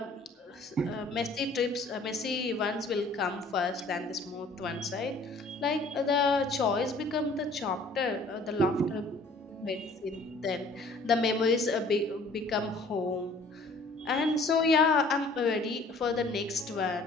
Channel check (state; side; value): quieter; right; 3.1 dB